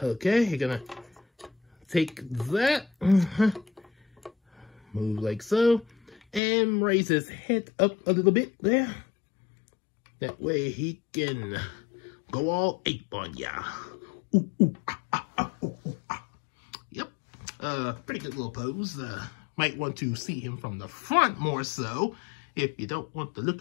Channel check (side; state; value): right; drops out; at 6.4 s